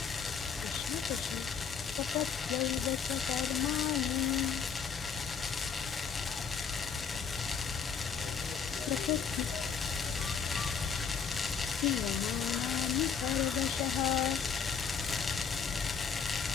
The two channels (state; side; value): quieter; right; 6.4 dB